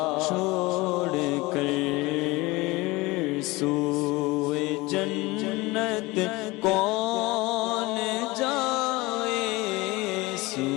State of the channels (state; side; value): quieter; right; 22.0 dB